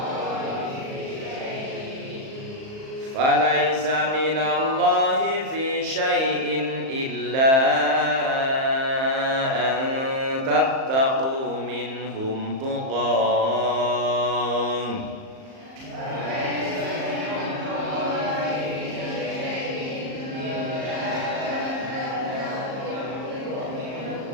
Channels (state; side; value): late; left; 38 ms